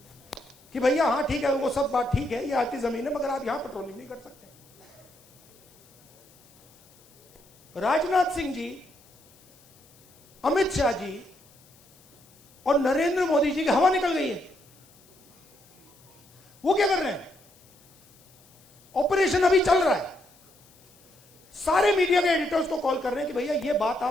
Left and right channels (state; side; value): noise; left; hiss, 29 dB below the sound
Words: कि भैया हाँ ठीक है, वो सब बात ठीक है, ये आपकी जमीन है, मगर आप यहां पेट्रोलिंग नहीं कर सकते। राजनाथ सिंह जी अमित शाह जी और नरेंद्र मोदी जी की हवा निकल गई है। वो क्या कर रहे हैं? ऑपरेशन अभी चल रहा है। सारे मीडिया के एडिटर्स को कॉल कर रहे हैं कि भैया ये बात